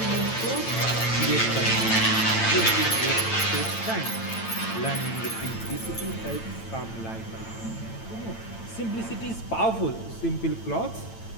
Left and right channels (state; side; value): late; right; 9.0 ms